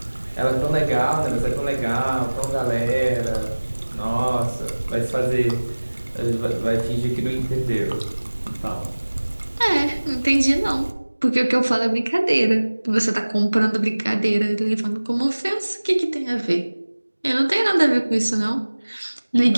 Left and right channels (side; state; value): both; inverted; correlation -1.00